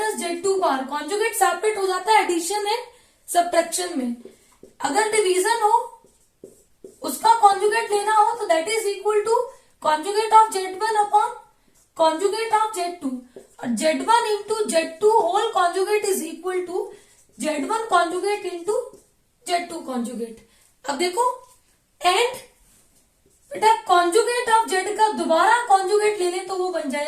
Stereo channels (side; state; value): both; identical; correlation 1.00